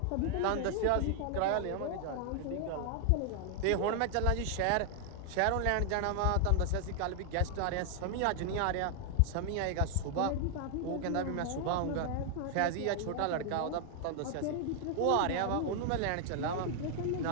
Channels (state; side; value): different; both; correlation 0.00